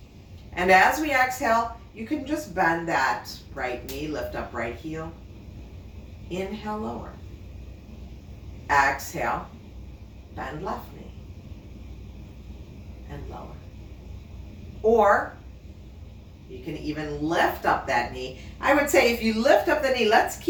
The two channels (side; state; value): both; identical; correlation 1.00